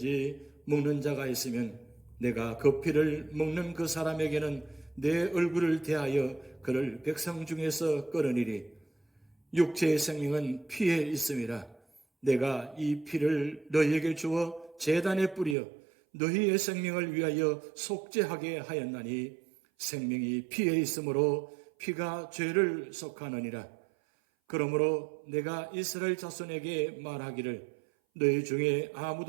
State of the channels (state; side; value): drops out; left; at 15.6 s